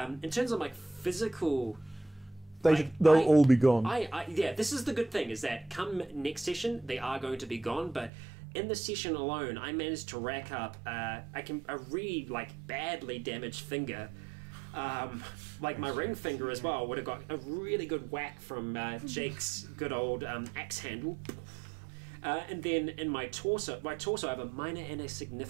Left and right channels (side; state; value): left; drops out; at 8.1 s